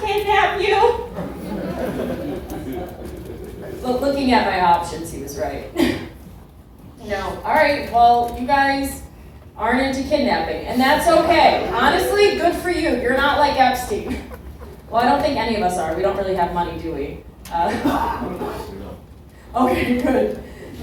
kidnap you. But looking at my options, he was right. No, all right, well, you guys aren't into kidnapping, and that's okay. Honestly, good for you. You're not like Epstein. Well, I don't think any of us are. We don't really have money, do we? Okay, good.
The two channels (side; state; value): both; identical; correlation 1.00